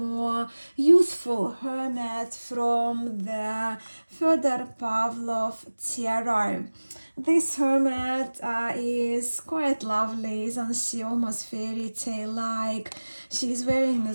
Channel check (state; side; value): inverted; both; correlation -1.00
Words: youthful hermit from the Fyodor Pavlov Tarot. This hermit is quite lovely, isn't she? Almost fairy tale like. She's wearing